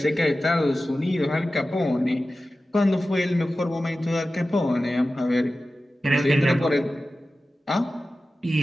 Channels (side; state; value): both; normal; correlation 0.95